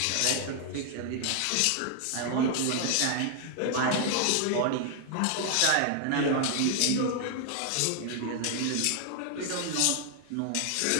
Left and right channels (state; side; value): different; both; correlation 0.00